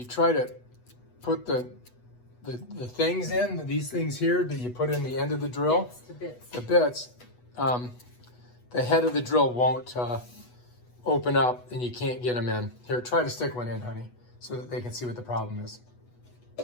try to put the things in, these things here that you put in the end of the drill, the bits, the head of the drill won't open up and you can't get them in. Here, try to stick one in, honey, so that they can see what the problem is.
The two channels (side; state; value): right; late; 8.2 ms